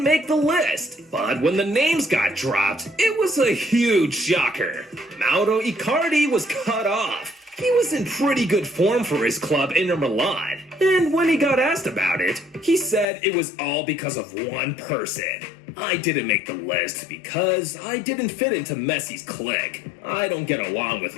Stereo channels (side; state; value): right; drops out; at 13.1 s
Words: the list. But when the names got dropped, it was a huge shocker. Mauro Icardi was cut off. He was in pretty good form for his club, Inter Milan, and when he got asked about it, he said it was all because of one person. I didn't make the list because I didn't fit into Messi's clique. I don't get along with